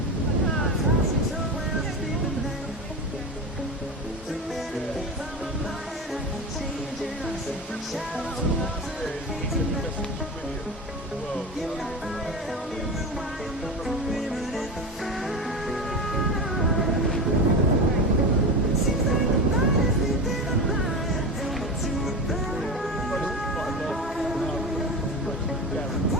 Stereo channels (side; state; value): both; normal; correlation 0.25